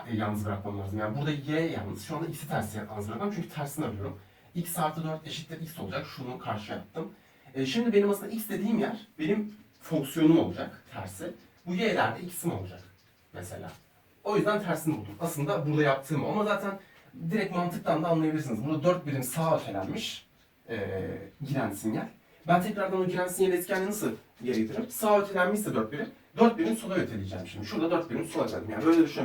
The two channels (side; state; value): both; identical; correlation 1.00